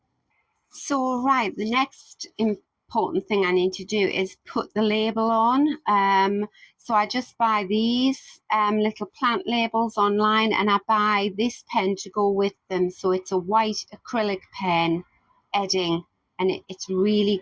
So right, the next important thing I need to do is put the label on. So I just buy these little plant labels online, and I buy this pen to go with them. So it's a white acrylic pen, Edding, and it's really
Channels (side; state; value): both; identical; correlation 1.00